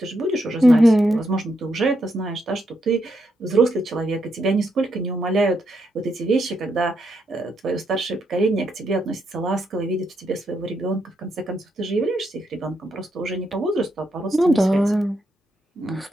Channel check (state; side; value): normal; both; correlation 0.80